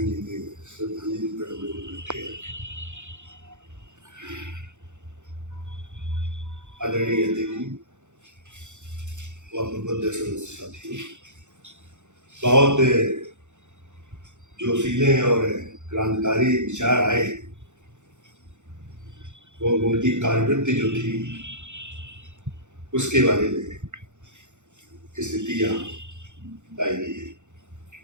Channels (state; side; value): late; left; 0.84 ms